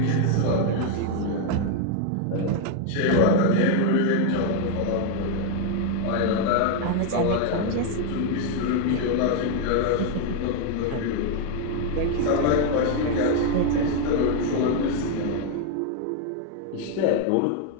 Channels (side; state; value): both; different; correlation 0.01